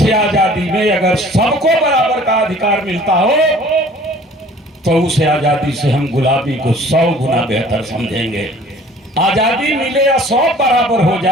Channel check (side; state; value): both; normal; correlation 0.51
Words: आजादी में अगर सबको बराबर का अधिकार मिलता हो तो उस आजादी से हम गुलामी को 100 गुना बेहतर समझेंगे। आजादी मिले या 100 बराबर हो